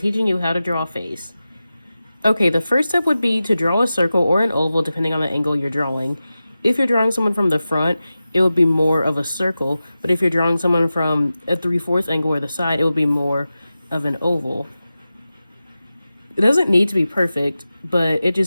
you how to draw a face. Okay, the first step would be to draw a circle or an oval depending on the angle you're drawing. If you're drawing someone from the front, it would be more of a circle, but if you're drawing someone from a 3/4 angle or the side, it would be more of an oval. It doesn't need to be perfect, but it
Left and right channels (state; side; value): inverted; both; correlation -0.94